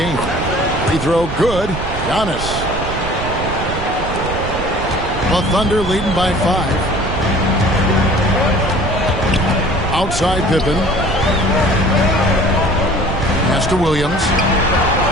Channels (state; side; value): noise; right; rumble, 7 dB below the sound